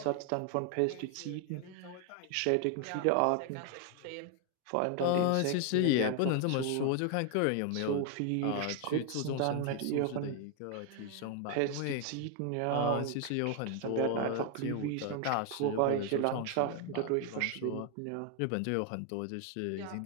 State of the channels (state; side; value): different; both; correlation 0.00